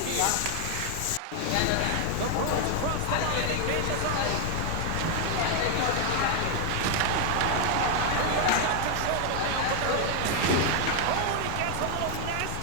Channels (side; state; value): both; different; correlation 0.00